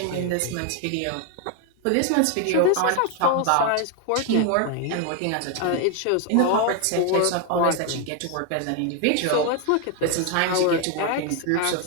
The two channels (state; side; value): different; both; correlation 0.01